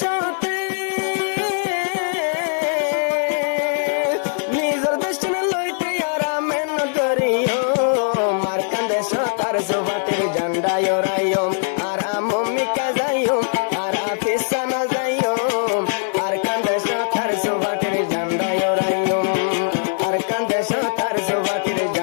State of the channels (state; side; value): silent; right; 65 dB below the other